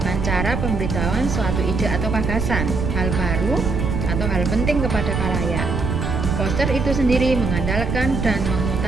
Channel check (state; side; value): noise; right; rumble, 1 dB below the sound